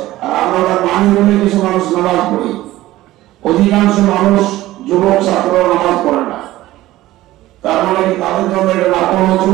আর আমরা তার মানি বলে কিছু মানুষ নামাজ পড়ি। অধিকাংশ মানুষ, যুবক ছাত্র নামাজ পড়ে না। তার মানে কি তাদের জন্য এটা না পড়া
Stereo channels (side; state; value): left; quieter; 16.2 dB